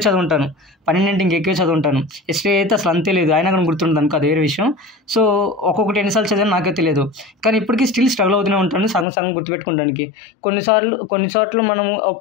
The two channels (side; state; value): right; drops out; at 9.1 s